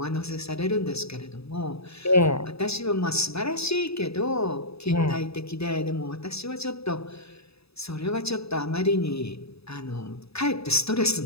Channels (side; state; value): right; late; 0.78 ms